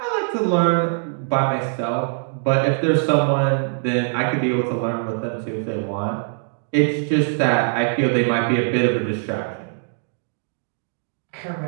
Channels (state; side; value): silent; left; digital silence